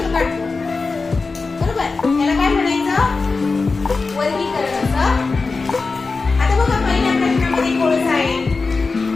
काढतो. बरोबर, याला काय म्हणायचं? वर्गीकरण असं. आता बघा पहिल्या प्रश्नामध्ये कोळसा आहे,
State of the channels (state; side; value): quieter; right; 4.1 dB